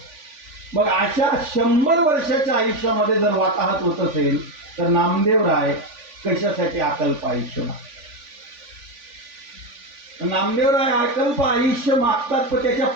मग अशा 100 वर्षाच्या आयुष्यामध्ये जर वाताहत होत असेल तर नामदेवराय कशासाठी अकल्प आयुष्य मागतात. नामदेवराय अकल्प आयुष्य मागतात, पण त्याच्या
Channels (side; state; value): left; late; 3.5 ms